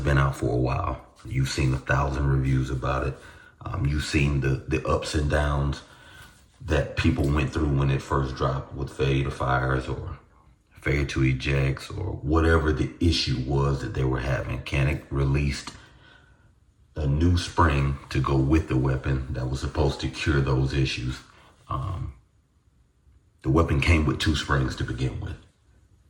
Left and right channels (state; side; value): identical; both; correlation 1.00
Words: out for a while. You've seen 1,000 reviews about it. You've seen the ups and downs that people went through when it first dropped with failure to fires or failure to ejects or whatever the issue was that they were having. Canik released a new spring to go with the weapon that was supposed to cure those issues. The weapon came with 2 springs to begin with.